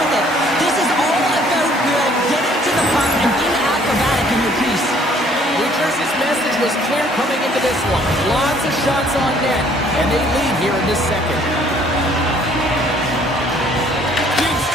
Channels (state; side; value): normal; both; correlation 0.60